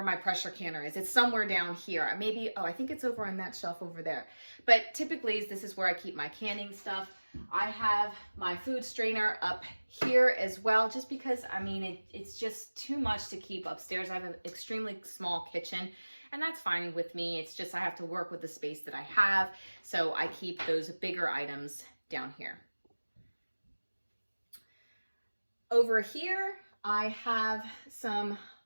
my pressure canner is. It's somewhere down here. Maybe, oh, I think it's over on that shelf over there. But typically, this is where I keep my canning stuff. I have my food strainer up here as well, just because, I mean, it's just too much to keep upstairs. I have an extremely small kitchen, and that's fine with me. It's just I have to work with the space that I have, so I keep those bigger items down here. Over here, I have some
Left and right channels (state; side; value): inverted; both; correlation -1.00